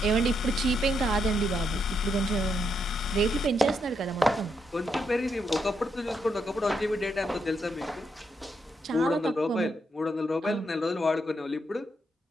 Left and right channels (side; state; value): both; normal; correlation 0.80